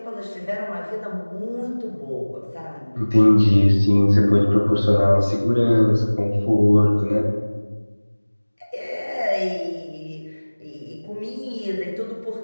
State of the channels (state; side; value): inverted; both; correlation -1.00